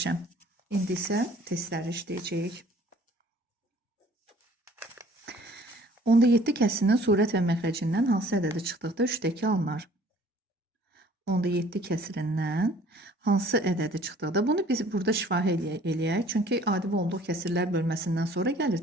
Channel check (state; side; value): normal; both; correlation 0.54